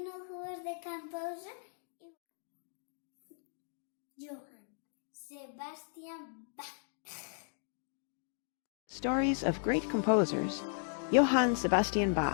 know who was the composer? Johann Sebastian Bach. Stories of great composers. Johann Sebastian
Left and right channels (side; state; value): right; silent; digital silence